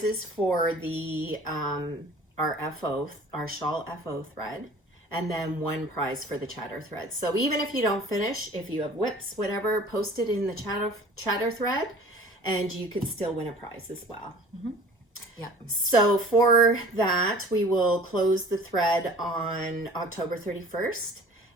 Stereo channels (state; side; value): normal; both; correlation 0.46